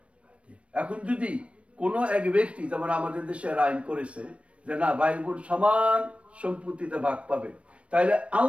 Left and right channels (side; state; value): left; late; 0.062 ms